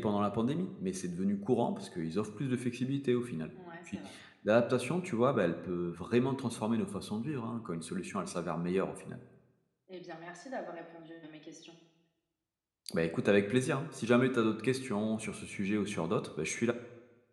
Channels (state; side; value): identical; both; correlation 1.00